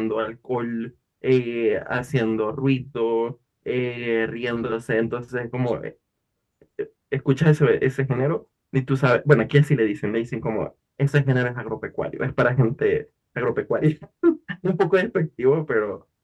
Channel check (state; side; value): identical; both; correlation 1.00